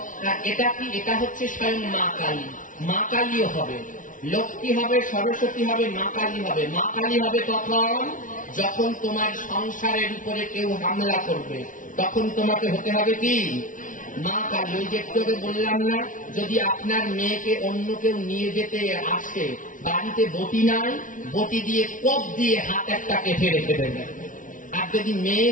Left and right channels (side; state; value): right; late; 0.38 ms